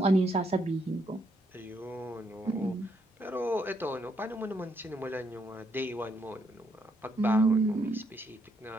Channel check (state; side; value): normal; both; correlation 0.75